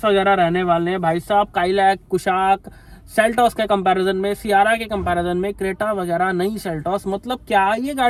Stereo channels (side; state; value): both; identical; correlation 1.00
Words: वगैरह रहने वाले हैं। भाई साहब काइलैक, कुशाक, सेल्टॉस के कंपैरिजन में, सियारा के कंपैरिजन में, क्रेटा वगैरह नई सेल्टॉस, मतलब क्या ये